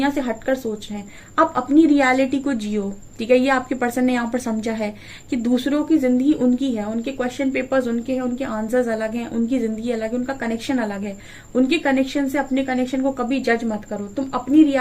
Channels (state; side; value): identical; both; correlation 1.00